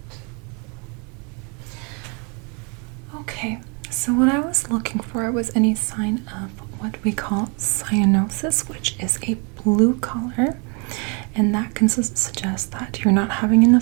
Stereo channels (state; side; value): quieter; left; 33.8 dB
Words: Okay, so what I was looking for was any sign of what we call cyanosis, which is a blue color. and that can suggest that you're not having